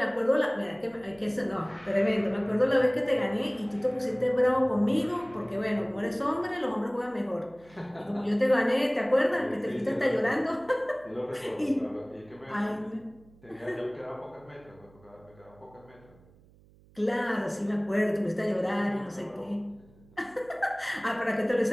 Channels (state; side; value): noise; right; hum, 27 dB below the sound